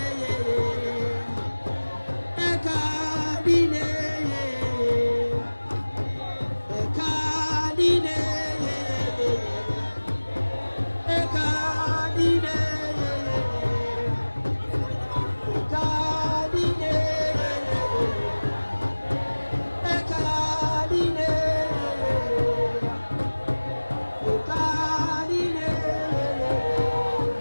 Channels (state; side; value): inverted; both; correlation -1.00